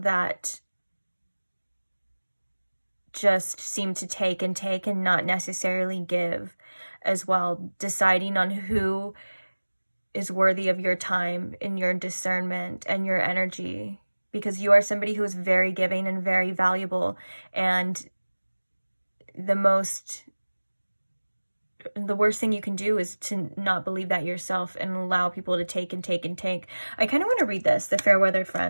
that just seem to take and not necessarily give as well. Deciding on who is worthy of your time and your discernment and your energy, because you are somebody who is very giving and very valuable. And the worst thing you can do is to not believe that yourself and allow people to take and take and take. I kind of want to read this, the fair-weathered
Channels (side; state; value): both; inverted; correlation -1.00